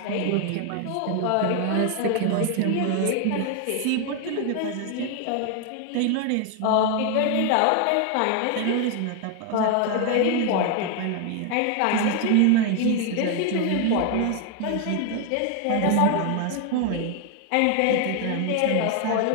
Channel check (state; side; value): different; both; correlation 0.01